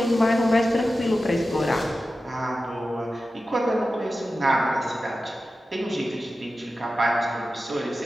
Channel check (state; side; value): normal; both; correlation 0.93